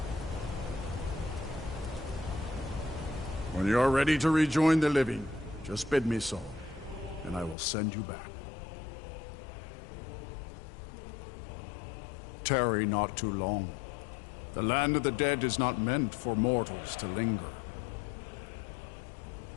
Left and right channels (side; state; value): right; drops out; at 7.6 s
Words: When you are ready to rejoin the living, just bid me so, and I will send you back. Tarry not too long. The land of the dead is not meant for mortals to linger.